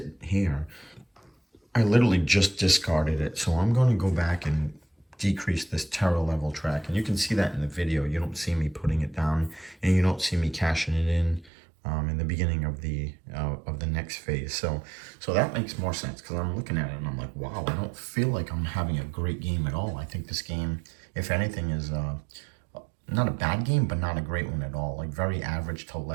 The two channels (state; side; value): drops out; left; at 11.5 s